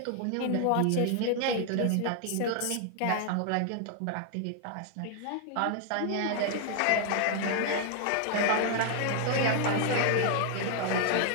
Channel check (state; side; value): different; both; correlation 0.00